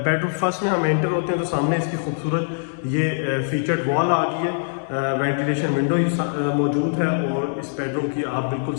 फर्स्ट में हम एंटर होते हैं तो सामने इसकी खूबसूरत ये फीचर्ड वॉल आ गई है। वेंटिलेशन विंडो मौजूद है। और इस बेडरूम की आप बिल्कुल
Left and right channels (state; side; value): silent; right; digital silence